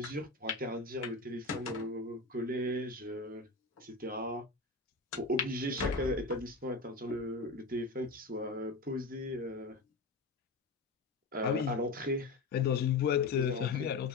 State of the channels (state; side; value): quieter; right; 3.6 dB